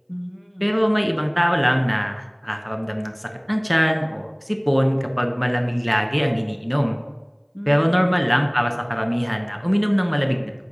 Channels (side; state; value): both; identical; correlation 1.00